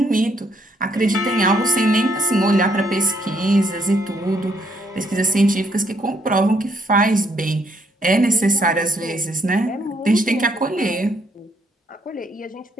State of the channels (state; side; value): normal; both; correlation 0.70